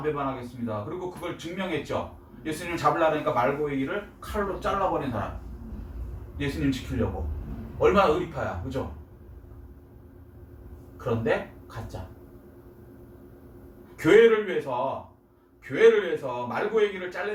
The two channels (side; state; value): both; identical; correlation 1.00